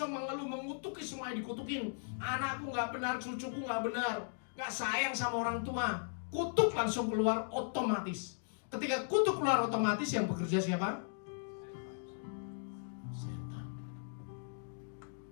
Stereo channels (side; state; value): right; silent; digital silence